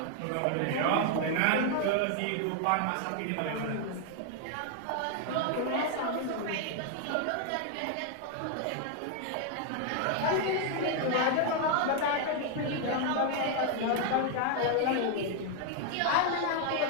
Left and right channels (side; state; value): both; different; correlation 0.00